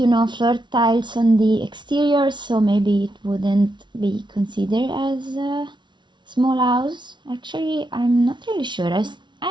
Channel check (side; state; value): left; late; 0.23 ms